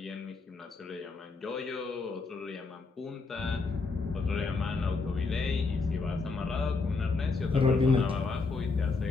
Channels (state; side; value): quieter; right; 4.2 dB